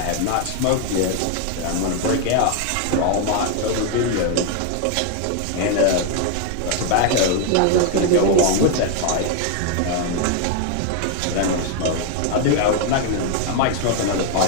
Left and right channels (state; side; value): different; both; correlation 0.00